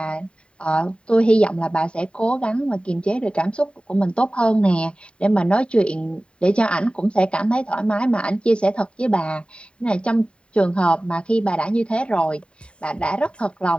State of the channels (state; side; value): late; right; 0.055 ms